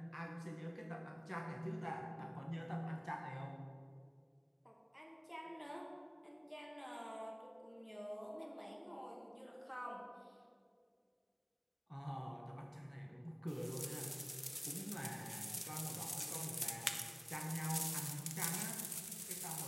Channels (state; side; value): identical; both; correlation 1.00